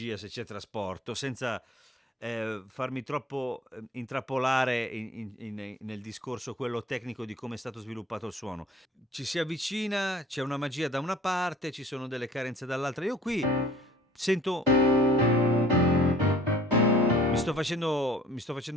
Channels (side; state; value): both; normal; correlation 0.50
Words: se c'è trasporto, senza farmi troppo intrappolare nel discorso quello tecnico di come è stato sviluppato il suono. Ci si avvicina, c'è una magia da una parte, ci sono delle carenze dall'altra. Io qui sento. Mi sto